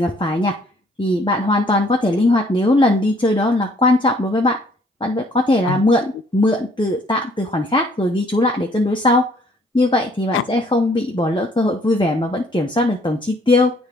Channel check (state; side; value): normal; both; correlation 0.62